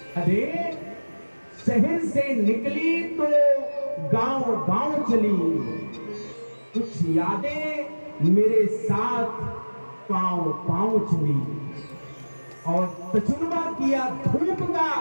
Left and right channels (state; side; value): inverted; both; correlation -1.00